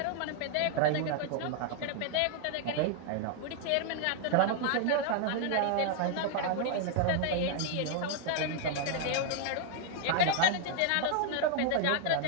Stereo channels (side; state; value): both; different; correlation 0.00